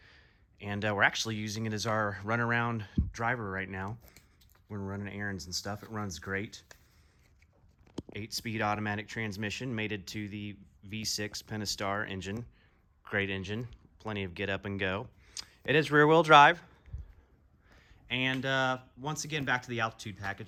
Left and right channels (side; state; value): both; identical; correlation 1.00